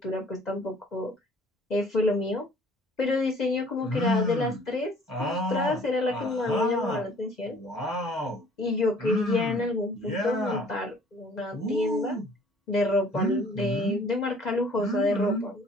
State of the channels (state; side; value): normal; both; correlation 0.54